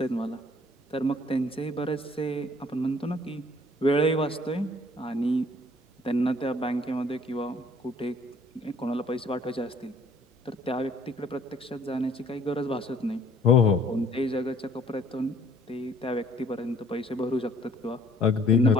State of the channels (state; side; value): normal; both; correlation 0.58